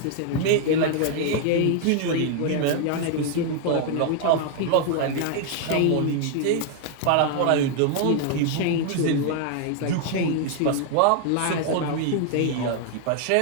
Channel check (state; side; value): different; both; correlation 0.00